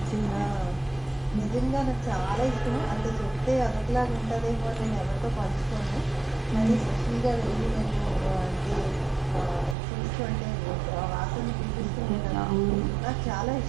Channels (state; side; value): drops out; left; at 9.8 s